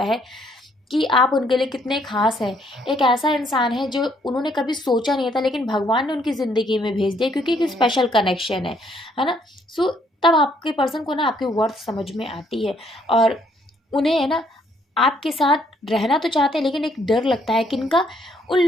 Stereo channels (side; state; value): both; normal; correlation 0.68